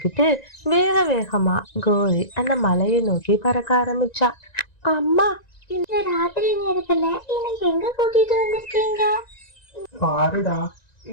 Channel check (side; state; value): right; late; 1.9 ms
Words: வேக வேகமா கோரி அந்த மலையை நோக்கி பறக்க ஆரம்பிச்சா. அம்மா, இந்த ராத்திரி நேரத்துல என்னை எங்க கூட்டிட்டு வந்திருக்கீங்க? பாருடா,